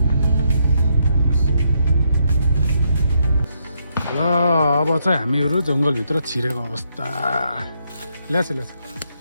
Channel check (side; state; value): both; inverted; correlation -0.76